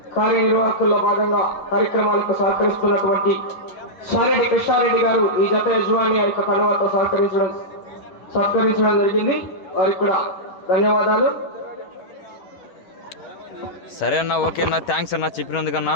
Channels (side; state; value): right; late; 11 ms